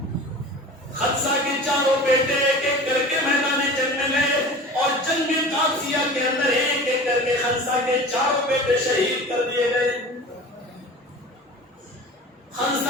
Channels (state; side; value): normal; both; correlation 0.38